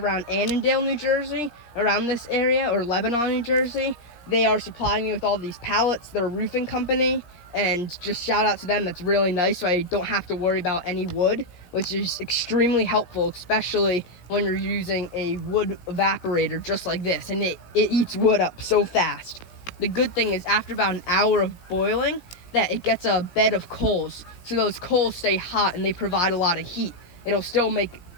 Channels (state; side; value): late; right; 17 ms